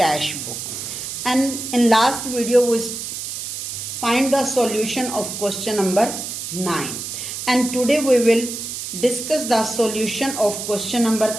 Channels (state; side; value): noise; right; hiss, 6 dB below the sound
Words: book, and in last video we find the solution of question number 9, and today we will discuss the solution of question number